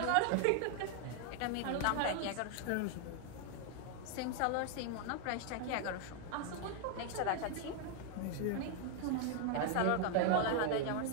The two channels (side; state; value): both; different; correlation 0.00